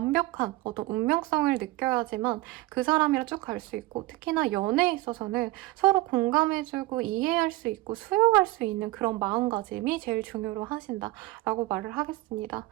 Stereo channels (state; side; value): quieter; left; 19.1 dB